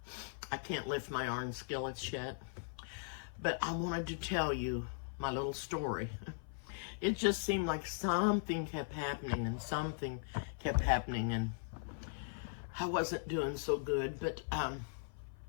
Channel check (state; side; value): silent; right; 52 dB below the other